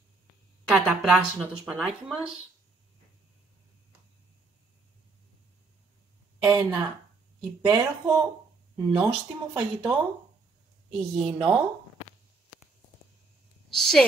Καταπράσινο το σπανάκι μας. Ένα υπέροχο νόστιμο φαγητό, υγιεινό, σε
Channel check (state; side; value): quieter; left; 3.9 dB